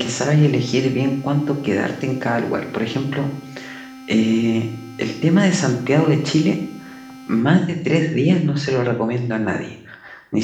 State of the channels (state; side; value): identical; both; correlation 1.00